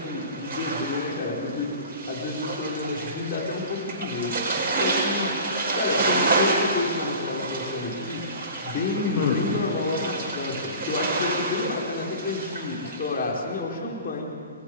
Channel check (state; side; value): inverted; both; correlation -0.38